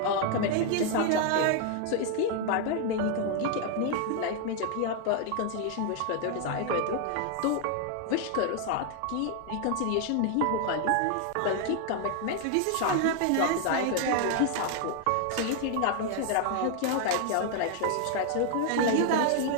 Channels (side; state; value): both; different; correlation 0.00